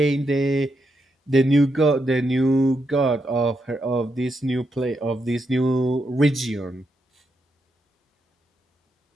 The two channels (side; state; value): both; normal; correlation 0.82